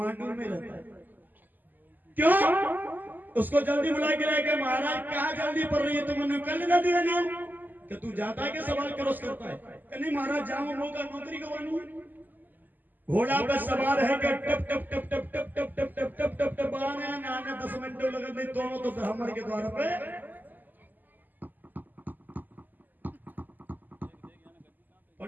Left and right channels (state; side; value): late; left; 0.086 ms